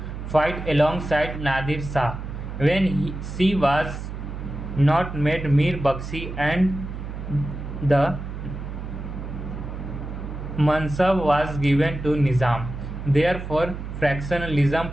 fight alongside Nadir Shah when she was not made Mir Bakshi and the Mansab was given to Nizam. Therefore,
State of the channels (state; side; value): noise; right; hum, 8 dB below the sound